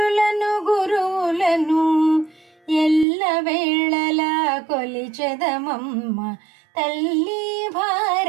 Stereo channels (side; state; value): left; drops out; at 3.1 s